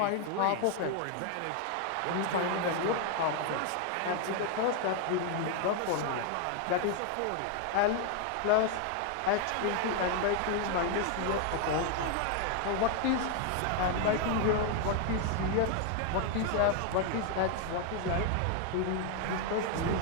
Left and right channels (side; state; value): both; different; correlation 0.00